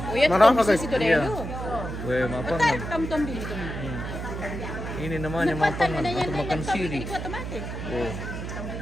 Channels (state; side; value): noise; right; hum, 6 dB below the sound